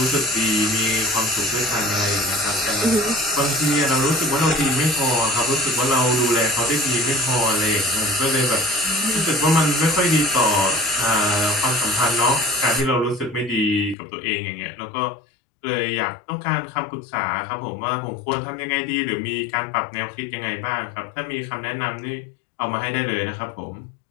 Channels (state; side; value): drops out; right; at 14.0 s